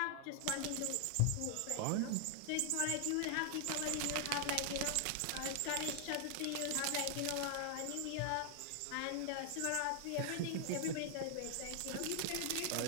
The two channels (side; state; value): both; different; correlation 0.00